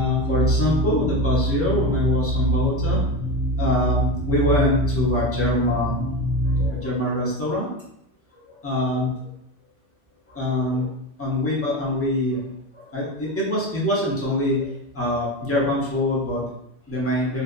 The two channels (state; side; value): normal; both; correlation 0.22